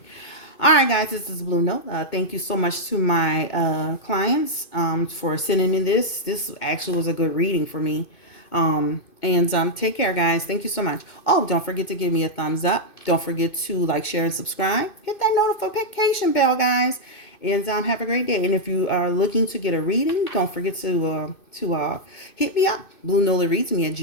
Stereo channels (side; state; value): right; late; 2.5 ms